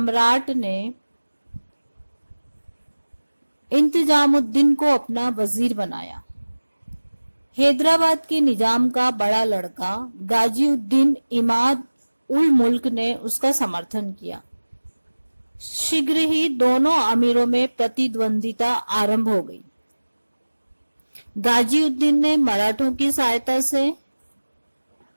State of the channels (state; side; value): inverted; both; correlation -1.00